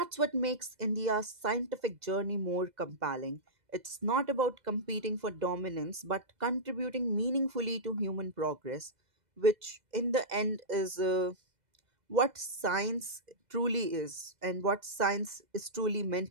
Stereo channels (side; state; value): left; late; 2.0 ms